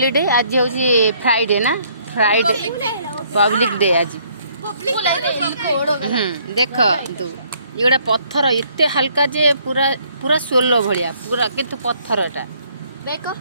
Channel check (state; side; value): inverted; both; correlation -0.64